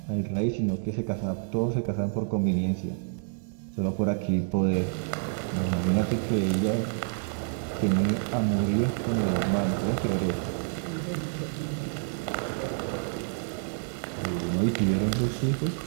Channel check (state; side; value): silent; left; digital silence